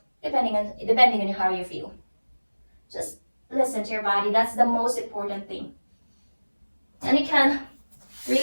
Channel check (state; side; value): inverted; both; correlation -1.00